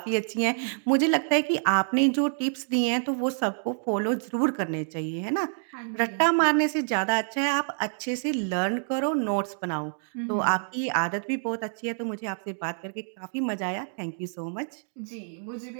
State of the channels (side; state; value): left; silent; digital silence